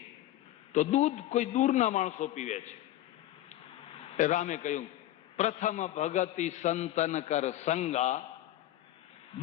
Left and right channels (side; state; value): right; quieter; 13.9 dB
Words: તો દૂધ કોઈ દૂરના માણસો પીવે છે. રામે કહ્યું પ્રથમ ભગતિ સંતન કર સંગા